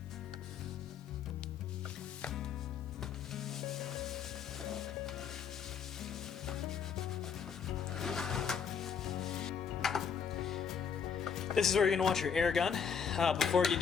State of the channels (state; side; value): quieter; right; 6.9 dB